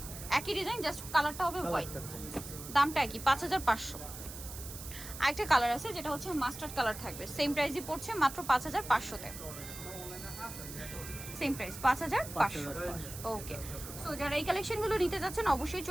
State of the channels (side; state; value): right; noise; hiss, 11 dB below the sound